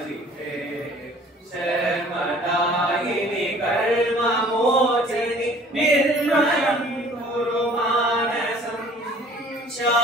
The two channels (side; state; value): both; normal; correlation 0.52